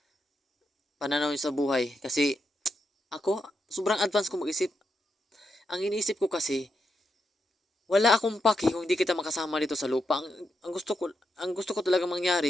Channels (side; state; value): both; normal; correlation 0.84